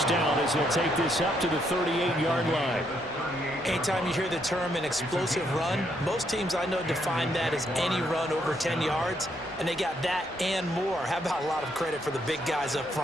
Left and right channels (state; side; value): normal; both; correlation 0.74